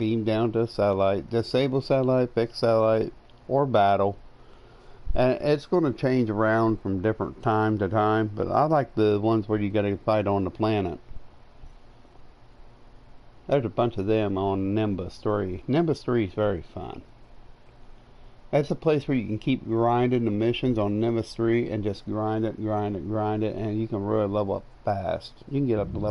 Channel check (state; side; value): identical; both; correlation 1.00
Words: down to a satellite, disable satellite, fix satellite, or battle. And it's going to change around from different time to time, but I like the ones where you got to fight on the planet. There's a bunch of them on Nimbus 3. Nimbus 3 is very fun. That's a place where you can keep grinding the missions on Nimbus 3 and just grind it, and you can really level up fast. You can get up to